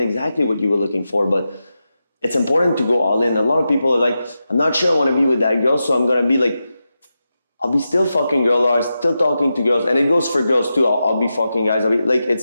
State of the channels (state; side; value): inverted; both; correlation -0.90